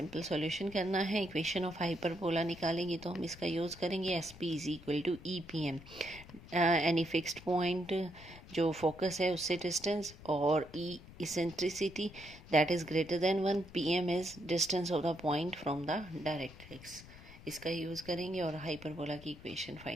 solution करना है। Equation of hyperbola निकालेंगे तो हम इसका यूज़ करेंगे S P is equal to E P M, any fixed point जो फोकस है उससे डिस्टेंस, और E eccentricity that is greater than 1, P M is distance of the point from the directrix. इसका यूज़ करेंगे और hyperbola की equation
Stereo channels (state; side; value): noise; left; rumble, 18 dB below the sound